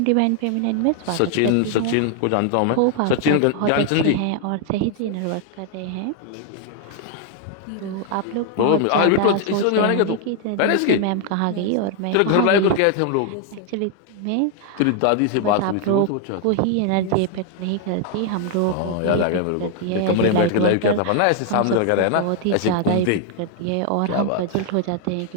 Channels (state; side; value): different; both; correlation 0.00